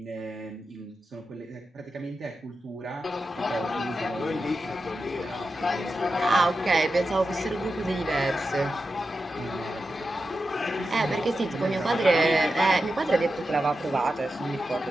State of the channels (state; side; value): normal; both; correlation 0.90